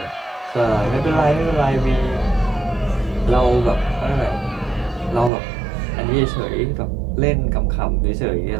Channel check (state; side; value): drops out; left; at 5.3 s